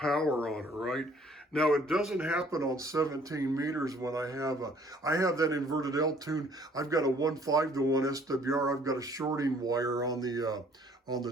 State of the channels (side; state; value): both; normal; correlation 0.58